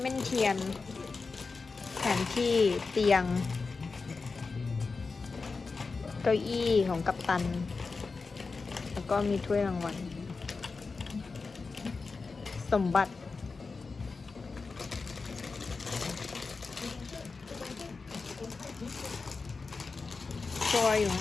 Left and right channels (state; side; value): quieter; right; 4.3 dB